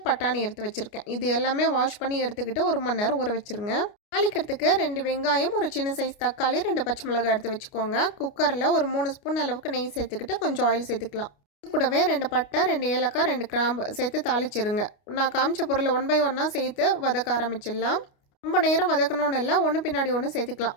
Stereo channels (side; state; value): right; late; 29 ms